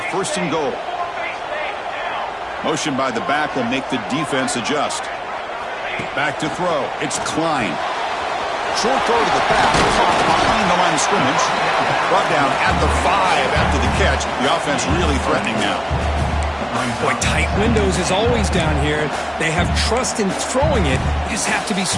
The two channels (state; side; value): identical; both; correlation 1.00